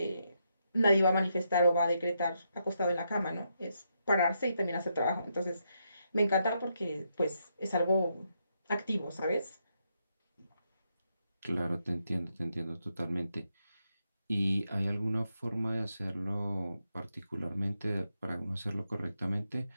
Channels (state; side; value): inverted; both; correlation -0.80